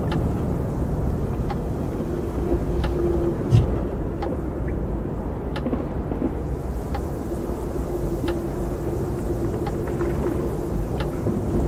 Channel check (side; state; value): both; identical; correlation 1.00